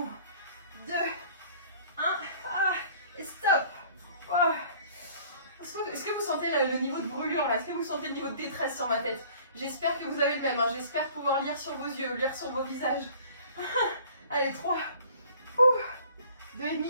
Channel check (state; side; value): inverted; both; correlation -0.51